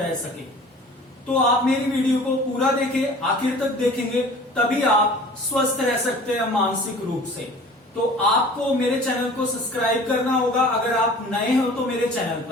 सके। तो आप मेरी वीडियो को पूरा देखें, आखिर तक देखेंगे तभी आप स्वस्थ रह सकते हैं मानसिक रूप से। तो आपको मेरे चैनल को सब्सक्राइब करना होगा अगर आप नए हो तो मेरे चैनल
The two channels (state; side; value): normal; both; correlation 0.45